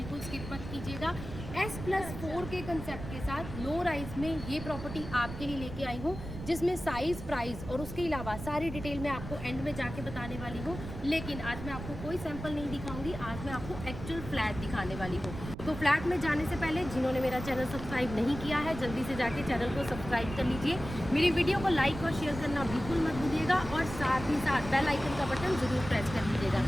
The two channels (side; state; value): right; noise; rumble, 10 dB below the sound